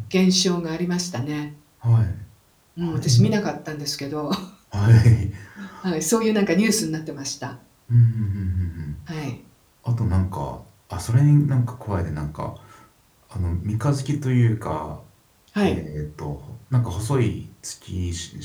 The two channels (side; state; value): both; identical; correlation 1.00